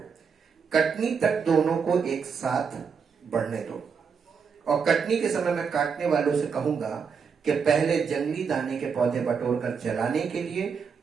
कटनी तक दोनों को एक साथ बढ़ने दो, और कटनी के समय मैं काटने वालों से कहूंगा कि पहले जंगली दाने के पौधे बटोर कर जलाने के लिए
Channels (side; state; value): left; quieter; 6.1 dB